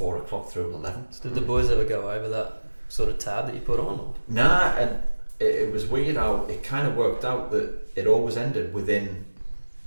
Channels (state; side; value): inverted; both; correlation -1.00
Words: o'clock through 11. did the boys ever go over that sort of tab that you put on? Or? Nah, and it was weird how it kind of worked out that it always ended within